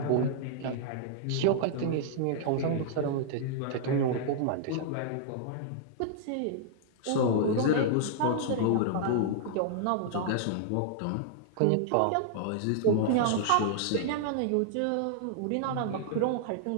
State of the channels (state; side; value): different; both; correlation -0.01